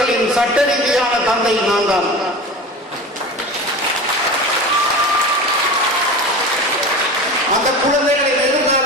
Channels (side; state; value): both; normal; correlation 0.32